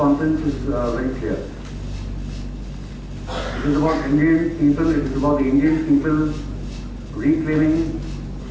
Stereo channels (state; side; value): identical; both; correlation 1.00